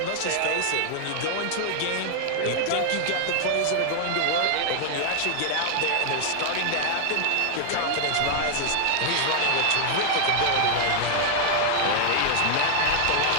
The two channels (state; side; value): different; both; correlation 0.00